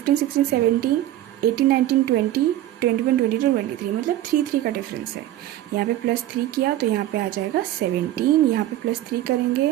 16 17 18 19 20 21 22 23, मतलब 3 का डिफरेंस है। यहाँ पे +3 किया तो यहाँ पे आ जाएगा 17। यहाँ पे +3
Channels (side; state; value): left; quieter; 13.7 dB